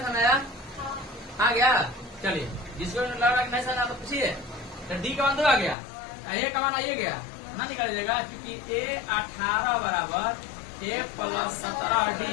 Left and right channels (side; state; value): right; drops out; at 5.8 s